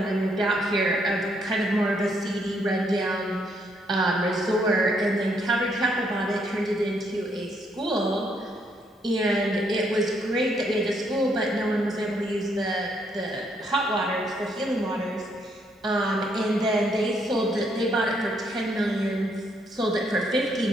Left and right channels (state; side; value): normal; both; correlation 0.73